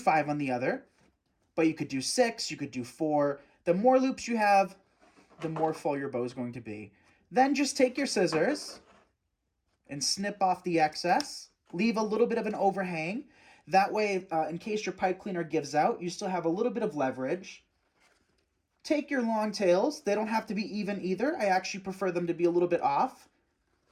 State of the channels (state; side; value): identical; both; correlation 1.00